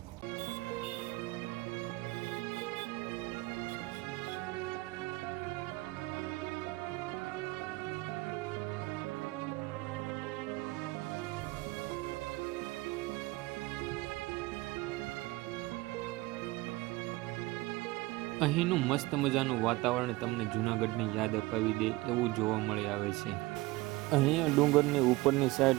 અહીંનું મસ્ત મજાનું વાતાવરણ તમને જૂનાગઢની યાદ અપાવી દે એવું જોવા મળી આવે છે. અહીંયા ડુંગરની ઉપરની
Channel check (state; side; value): quieter; left; 20.6 dB